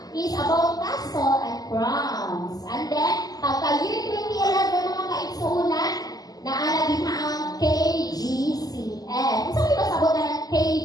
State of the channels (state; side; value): late; right; 0.18 ms